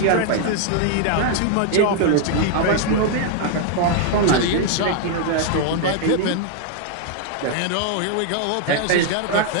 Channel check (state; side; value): different; both; correlation 0.00